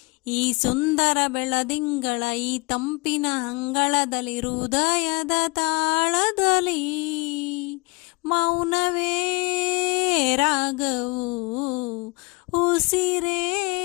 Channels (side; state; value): right; quieter; 26.9 dB